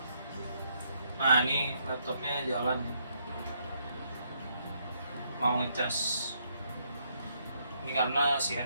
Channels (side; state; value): both; inverted; correlation -0.73